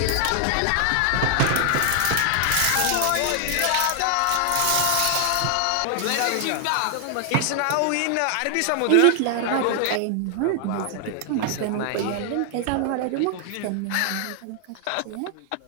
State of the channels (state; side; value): different; both; correlation 0.00